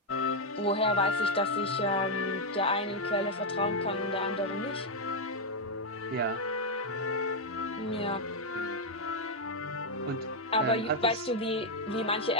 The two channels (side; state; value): both; normal; correlation 0.00